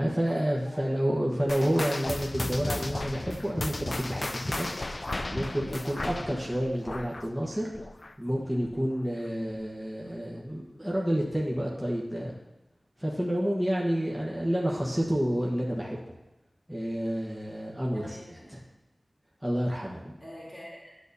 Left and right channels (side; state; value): both; normal; correlation 0.98